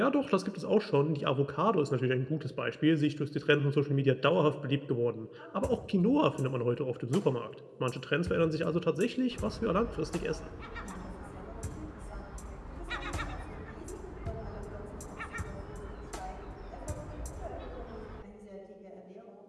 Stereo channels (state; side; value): identical; both; correlation 1.00